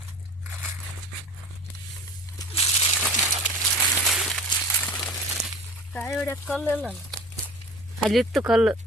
ಕಾಯಿ ಹೊಡ್ಯಕ್ಕೆ ಕಲ್ಲು ಇಲ್ಲ ಅಲ್ಲಿತ್ತು ಕಲ್ಲು.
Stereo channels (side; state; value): both; normal; correlation 0.38